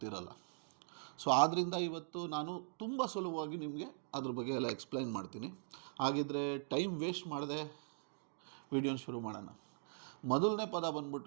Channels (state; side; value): silent; left; digital silence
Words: ಸೊ ಆದ್ದರಿಂದ ಇವತ್ತು ನಾನು ತುಂಬ ಸುಲಭವಾಗಿ ನಿಮಗೆ ಅದ್ರ ಬಗ್ಗೆ ಎಲ್ಲ ಎಕ್ಸ್ಪ್ಲೈನ್ ಮಾಡ್ತೀನಿ. ಹಾಗಿದ್ರೆ ಟೈಮ್ ವೇಸ್ಟ್ ಮಾಡದೆ ವಿಡಿಯೋನ ಶುರು ಮಾಡೋಣ. ಮೊದಲನೇ ಪದ